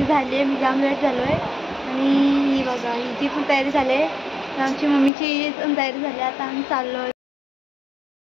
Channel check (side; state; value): right; drops out; at 5.1 s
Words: झाली आहे, मी जाम लेट झालो आहे. आणि ही बघा हिची पण तयारी झाली आहे, आमची मम्मीची पण तयारी झाली. आता आम्ही चाललो आहे.